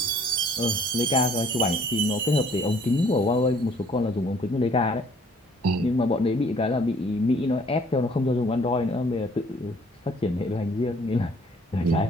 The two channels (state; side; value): normal; both; correlation 0.59